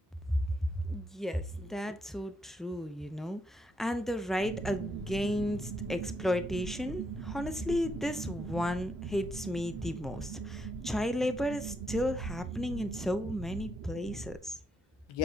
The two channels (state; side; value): normal; both; correlation 0.77